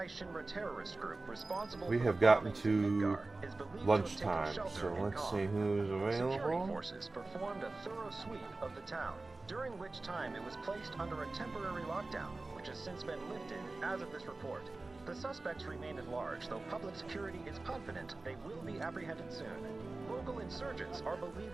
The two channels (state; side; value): quieter; left; 3.2 dB